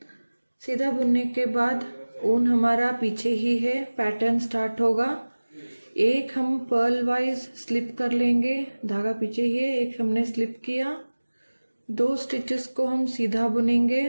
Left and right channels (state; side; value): inverted; both; correlation -1.00